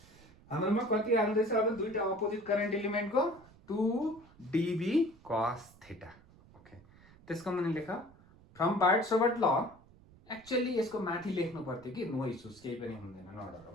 हाम्रोमा कति आउँदैछ अब? दुईटा अपोजिट करेन्ट एलिमेन्टको 2dB cos थीटा. ओके, त्यसको मुनि लेख फ्रम बार्ड-सोबर्ट ल. एक्चुअली यसको माथि लेख्नु पर्थ्यो कि नो इश्यूज, केही पनि हुँदैन, नडर हो.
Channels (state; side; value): noise; right; rumble, 25 dB below the sound